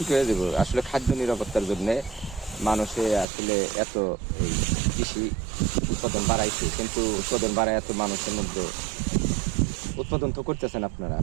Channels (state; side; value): drops out; left; at 3.2 s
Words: হয়ে যাবো। আসলে খাদ্য নিরাপত্তার জন্য মানুষে আসলে এত কৃষি উৎপাদন বাড়াইছে, কিন্তু উৎপাদন বাড়ায় এত মানুষের মধ্যে উৎপাদন তো করতেছেন আপনারা,